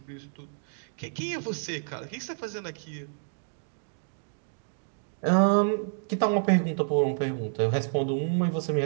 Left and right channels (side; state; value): left; silent; digital silence